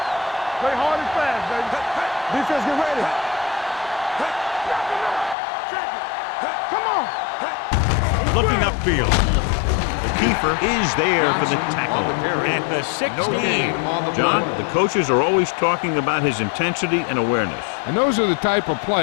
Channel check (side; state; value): right; drops out; at 5.4 s